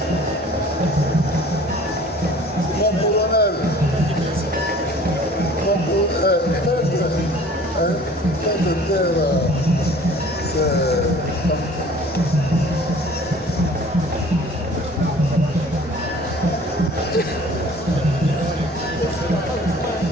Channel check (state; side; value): normal; both; correlation 0.49